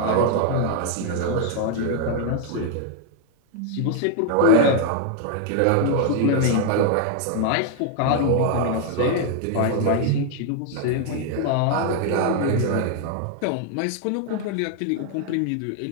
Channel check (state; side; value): different; both; correlation 0.00